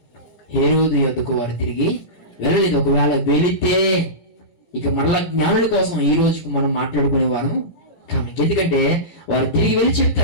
హేరోదు యొద్దకు వారు తిరిగి వెళ్ళలేదు. ఒకవేళ వెళితే ఇక మరలా జ్ఞానుల కోసం ఈ రోజుకు మనం మాట్లాడుకునేవారు కానీ, ఎందుకంటే వారు తిరిగి వెళ్ళి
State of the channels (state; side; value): late; right; 18 ms